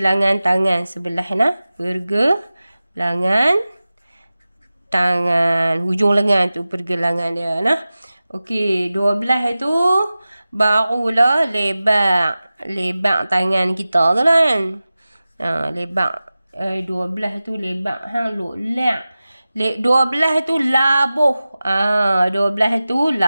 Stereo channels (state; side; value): inverted; both; correlation -0.96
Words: tangan sebelah pergelangan tangan. Hujung lengan tu pergelangan dia Okey, 12 tu barulah lebak tangan kita tu kan. Lebak 12 tu lebak lek. 12 tu labuh. 12 tu